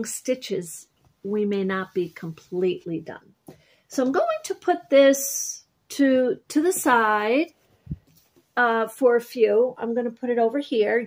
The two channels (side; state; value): both; identical; correlation 1.00